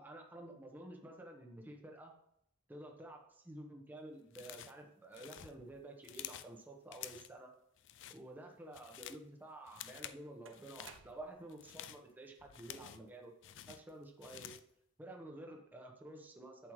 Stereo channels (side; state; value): both; normal; correlation 0.41